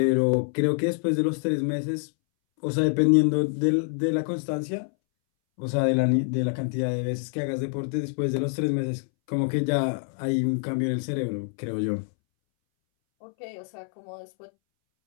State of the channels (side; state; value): right; silent; 61 dB below the other